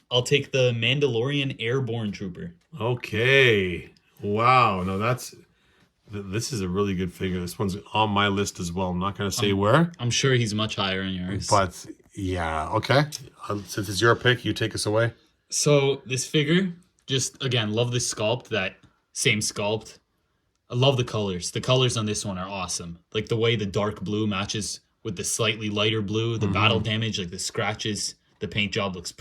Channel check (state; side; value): identical; both; correlation 1.00